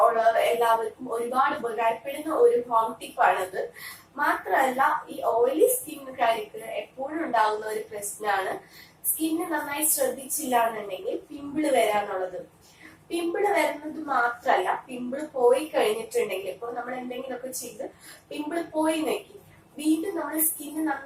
ഉള്ള എല്ലാവർക്കും ഒരുപാട് ഉപകാരപ്പെടുന്ന ഒരു ഹോം ടിപ്പാണത്. മാത്രമല്ല, ഈ ഓയിലി സ്കിന്നുകാർക്ക് എപ്പോഴും ഉണ്ടാകുന്ന ഒരു പ്രശ്നമാണ്, സ്കിന്ന് നന്നായി ശ്രദ്ധിച്ചില്ല എന്നുണ്ടെങ്കിൽ പിമ്പിള് വരാന്നുള്ളത്. പിമ്പിള് വരുന്നത് മാത്രമല്ല, പിമ്പിള് പോയി കഴിഞ്ഞിട്ടുണ്ടെങ്കിൽ, ഇപ്പൊ നമ്മൾ എന്തെങ്കിലുമൊക്കെ ചെയ്ത് പിമ്പിള് പോയി നോക്കി വീണ്ടും നമ്മൾ സ്കിന്ന്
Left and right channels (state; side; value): identical; both; correlation 1.00